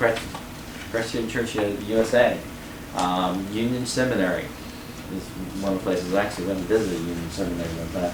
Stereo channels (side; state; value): both; identical; correlation 1.00